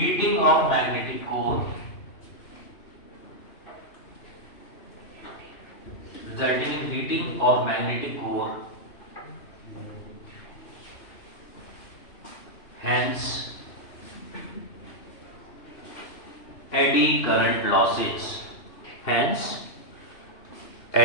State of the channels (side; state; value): right; late; 2.7 ms